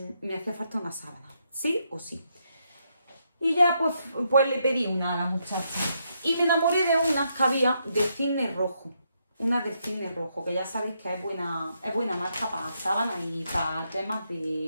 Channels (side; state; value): both; inverted; correlation -0.78